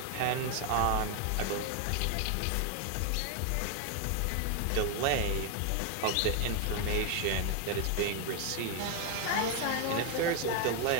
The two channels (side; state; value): both; different; correlation 0.01